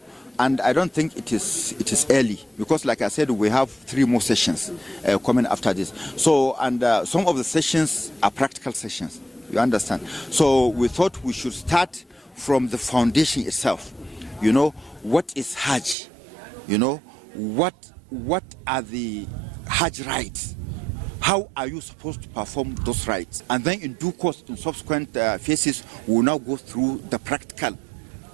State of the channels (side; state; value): left; drops out; at 16.0 s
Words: And I don't think it is early because, like I said, we have 3 more sessions coming after this. So, and some of the sessions are practical sessions. You understand? So we thought we should start from the foundation itself. You know, what is Hajj? You know, what are the Hajj rites? How are you supposed to perform those rites? And then in due course, in subsequent phases, we will now go through the practical